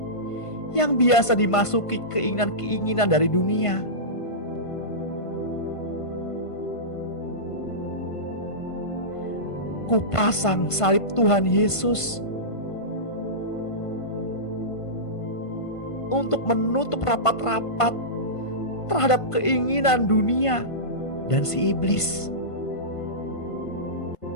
yang biasa dimasuki keinginan-keinginan dari dunia. Kupasang salib Tuhan Yesus untuk menutup rapat-rapat terhadap keinginan dunia dan si iblis.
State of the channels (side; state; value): right; late; 1.5 ms